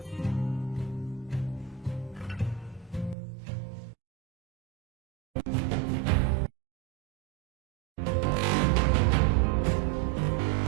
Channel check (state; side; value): drops out; left; at 3.2 s